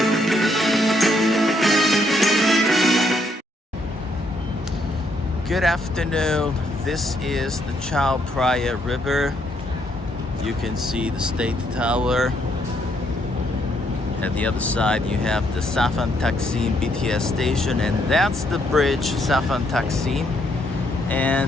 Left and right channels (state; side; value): normal; both; correlation 0.73